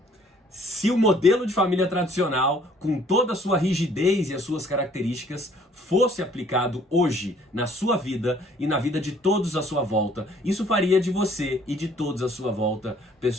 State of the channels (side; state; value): both; normal; correlation 0.59